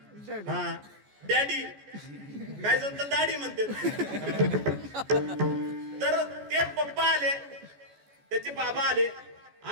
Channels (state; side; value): late; left; 14 ms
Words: हा डॅडी, काय जण तर दाढी म्हणते. तर ते पप्पा आले, त्याचे बाबा आले.